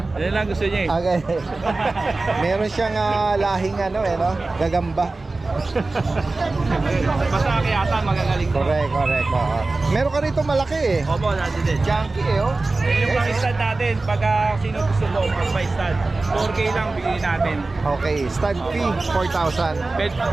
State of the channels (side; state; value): left; quieter; 3.4 dB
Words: Yan lang gusto niya eh. Okay. Meron siyang lahing no? Gagamba. Basta kayata magagaling ko. Correct. Oo. Meron ka rito malaki eh. Opo, natin din. Junkie eh, oh. Yung Guys, pang stand natin, pagka sino gusto mo, pag may stand, 4K lang bigyan natin. okay, stand fee, 4,000. Pet,